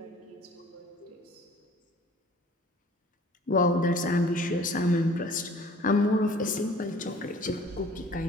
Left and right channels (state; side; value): normal; both; correlation 0.50